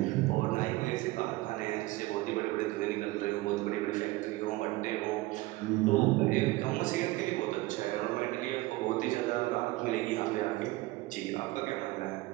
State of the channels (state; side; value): quieter; left; 19.6 dB